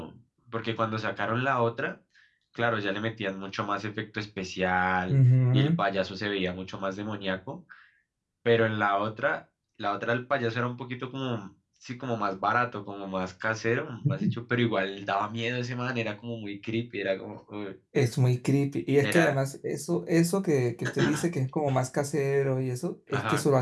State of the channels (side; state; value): both; identical; correlation 1.00